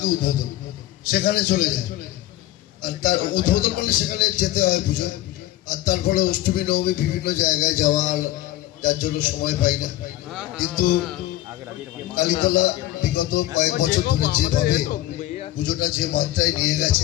উদ্বোধন, সেখানে চলে যায়। আর তার উদ্বোধন করলে সেখানে যেতে হয় পুজো, আর তারপরে অষ্টমী নবমী বিভিন্ন জায়গায় যাওয়ার, যার জন্য সময় পাই না। কিন্তু কালীতলা বিগত কয়েক বছর ধরে যেভাবে পুজোটা যে মাত্রায় নিয়ে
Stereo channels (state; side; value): quieter; right; 14.9 dB